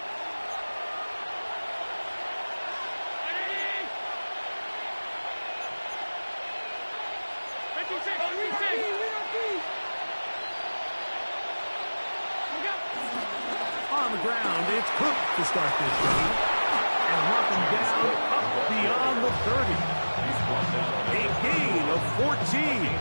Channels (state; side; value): inverted; both; correlation -1.00